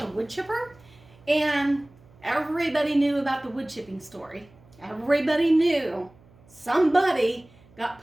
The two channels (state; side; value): noise; right; hum, 27 dB below the sound